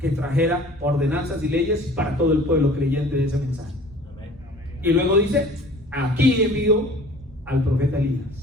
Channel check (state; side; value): normal; both; correlation 0.47